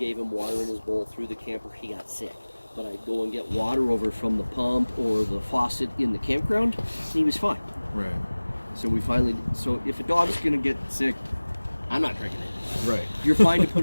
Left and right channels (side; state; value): both; inverted; correlation -1.00